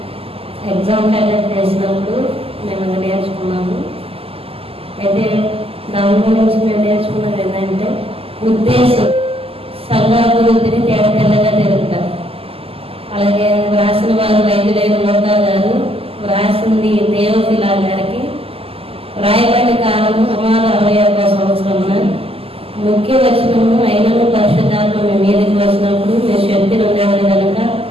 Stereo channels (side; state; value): left; late; 0.28 ms